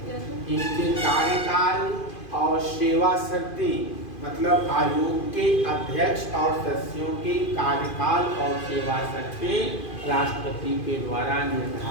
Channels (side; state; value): right; late; 2.5 ms